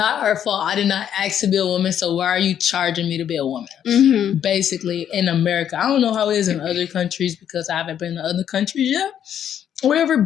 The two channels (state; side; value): quieter; right; 9.6 dB